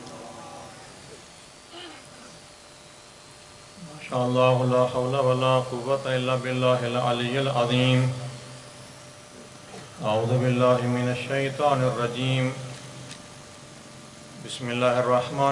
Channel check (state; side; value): identical; both; correlation 1.00